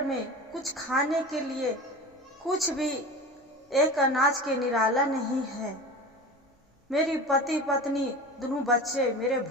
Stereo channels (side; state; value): both; normal; correlation 0.32